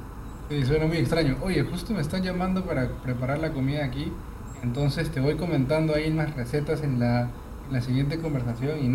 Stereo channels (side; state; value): both; identical; correlation 1.00